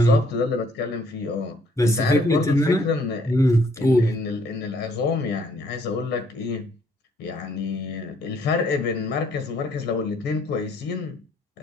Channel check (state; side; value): normal; both; correlation 0.65